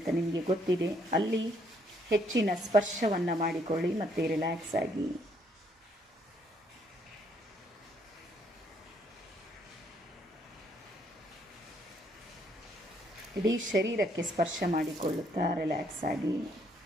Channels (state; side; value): normal; both; correlation 0.69